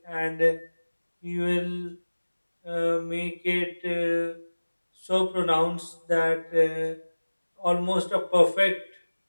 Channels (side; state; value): both; inverted; correlation -1.00